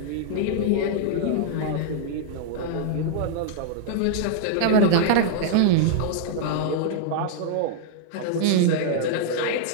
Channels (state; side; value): different; both; correlation -0.01